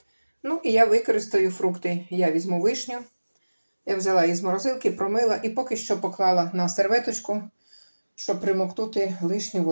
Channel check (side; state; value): both; inverted; correlation -1.00